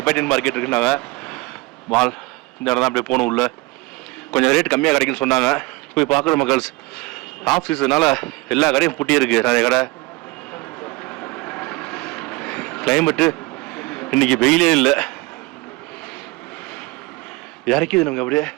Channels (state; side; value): quieter; left; 22.9 dB